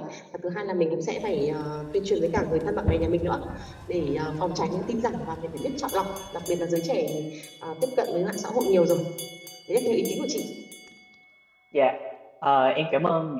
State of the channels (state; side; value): identical; both; correlation 1.00